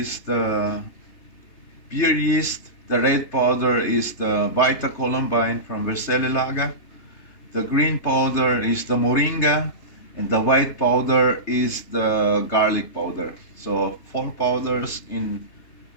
the beer yeast. The red powder is the Vita Columbine from Versele Laga. The green powder is the Moringa, and the white powder is the garlic powder. So 4 powders in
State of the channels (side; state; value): right; late; 3.3 ms